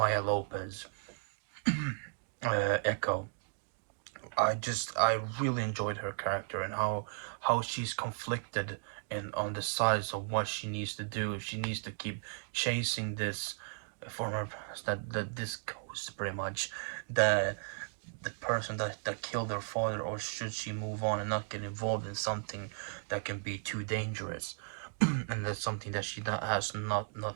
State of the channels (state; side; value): silent; left; digital silence